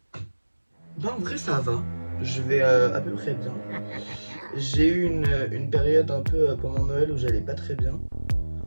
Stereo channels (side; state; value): both; inverted; correlation -1.00